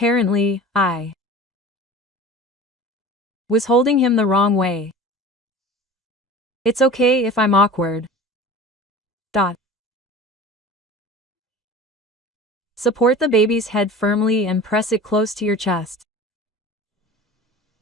I was holding him the wrong way. It's okay if I'm awkward. Support the baby's head firmly and press it close to your chest.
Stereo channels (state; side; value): normal; both; correlation 0.38